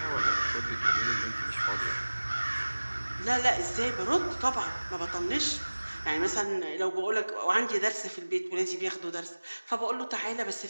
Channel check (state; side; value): inverted; both; correlation -1.00